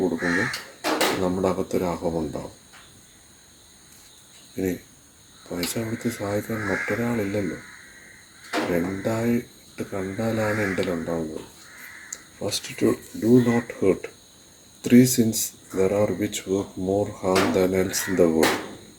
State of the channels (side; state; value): both; identical; correlation 1.00